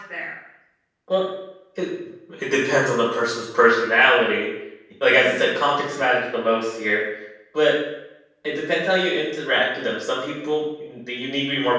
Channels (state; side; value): identical; both; correlation 1.00